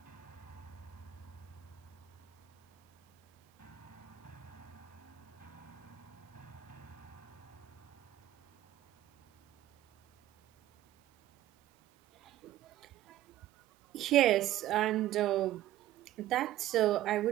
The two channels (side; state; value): left; quieter; 13.9 dB